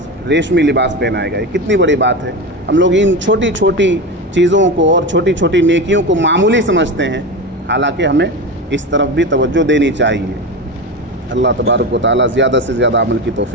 ریشمی لباس پہنائے گا۔ یہ کتنی بڑی بات ہے۔ ہم لوگ ان چھوٹی چھوٹی چیزوں کو اور چھوٹی چھوٹی نیکیوں کو معمولی سمجھتے ہیں، حالانکہ ہمیں اس طرف بھی توجہ دینی چاہیے۔ اللہ تبارک و تعالی زیادہ سے زیادہ عمل کی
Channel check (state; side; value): normal; both; correlation 0.22